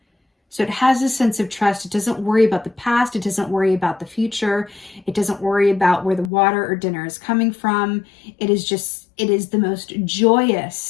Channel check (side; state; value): right; drops out; at 6.3 s